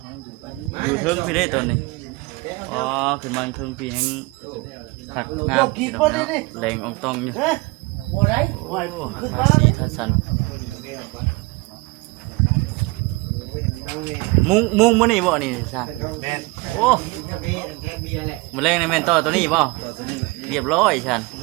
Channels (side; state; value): left; quieter; 24.5 dB